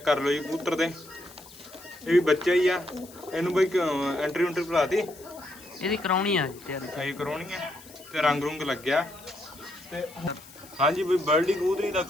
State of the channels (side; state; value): left; noise; hiss, 20 dB below the sound